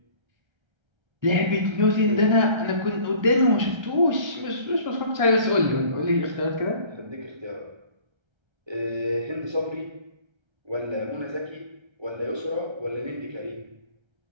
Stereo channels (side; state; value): left; late; 1.3 ms